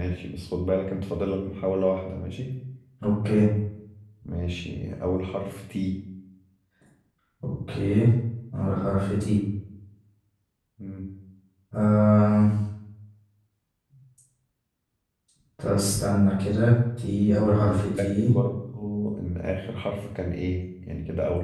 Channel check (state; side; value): identical; both; correlation 1.00